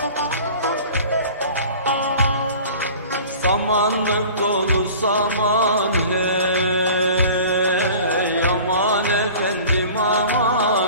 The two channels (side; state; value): both; inverted; correlation -0.43